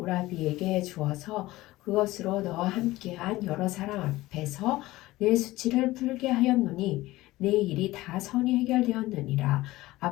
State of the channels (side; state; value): right; quieter; 18.0 dB